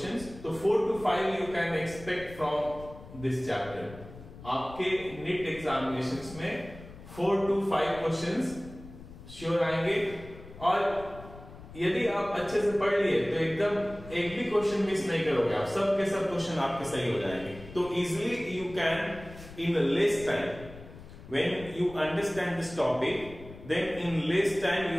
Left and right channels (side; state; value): left; noise; rumble, 16 dB below the sound